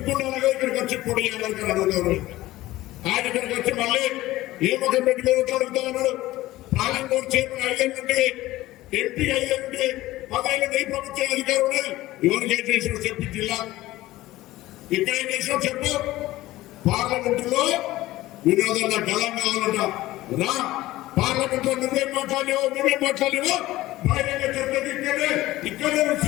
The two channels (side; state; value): right; quieter; 16.9 dB